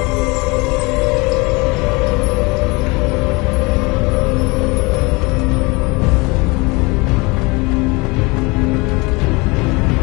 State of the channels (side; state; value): right; quieter; 26.2 dB